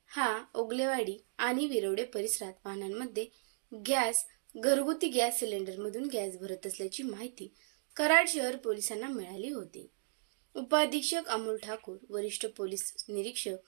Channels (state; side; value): silent; left; digital silence